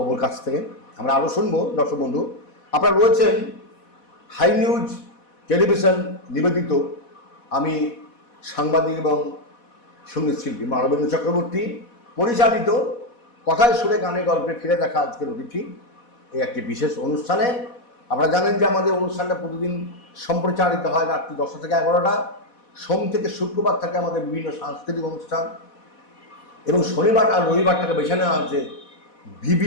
কাছ থেকে। আমরা আরও শুনবো। দর্শক বন্ধু, আপনারা রয়েছেন হাই নিউজ টেলিভিশন নিবেদিত, আমি সাংবাদিক এবং সঙ্গীত শিল্পী মানবেন্দ্র চক্রবর্তী পরিচালিত কথায় সুরে গানে গল্পে ফিরে দেখা আজকের অতিথি এই একটি বিশেষ অনুষ্ঠানে। আপনারা জানেন যে আমাদের অনুষ্ঠানটা প্রতিদিন সম্প্রচারিত হয় রাত্রি 10টা থেকে 11টা। সোম থেকে শুক্রবার থাকে আমাদের বিভিন্ন সাংস্কৃতিক অনুষ্ঠান, এবং শনিবার আর রবিবারটাকে বেছে নেওয়া হচ্ছে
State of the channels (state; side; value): late; right; 4.1 ms